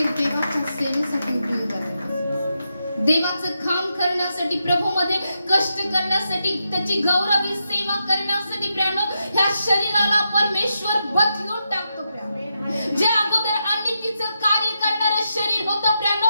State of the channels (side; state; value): both; inverted; correlation -0.86